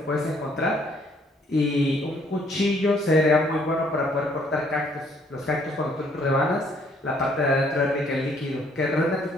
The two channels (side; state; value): both; normal; correlation 0.65